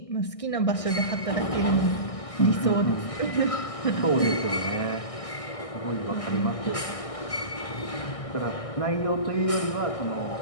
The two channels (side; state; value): right; late; 1.6 ms